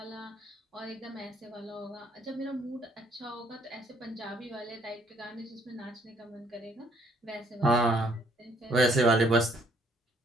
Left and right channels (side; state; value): both; normal; correlation 0.65